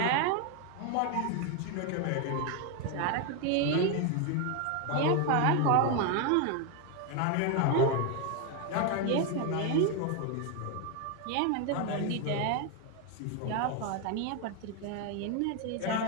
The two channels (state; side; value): different; both; correlation 0.01